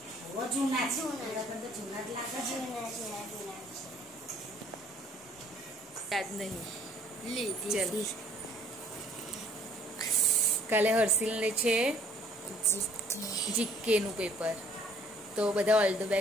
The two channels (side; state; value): both; normal; correlation 0.58